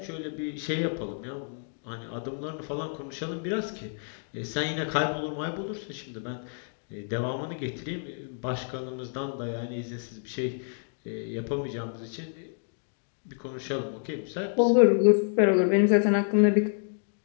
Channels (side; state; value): right; silent; 59 dB below the other